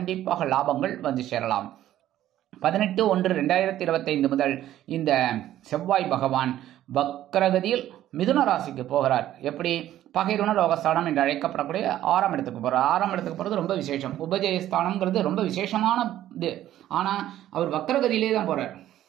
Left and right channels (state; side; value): quieter; left; 12.8 dB